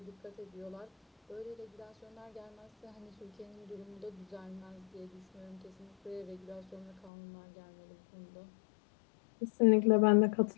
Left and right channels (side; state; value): right; drops out; at 7.1 s